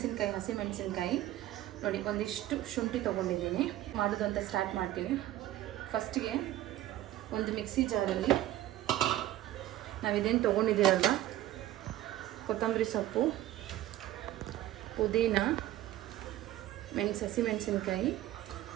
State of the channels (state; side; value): quieter; left; 14.1 dB